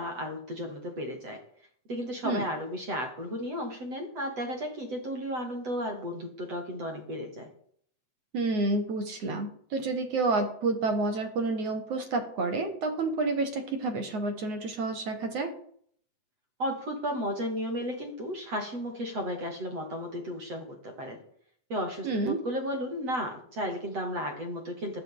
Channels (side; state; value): left; late; 7.9 ms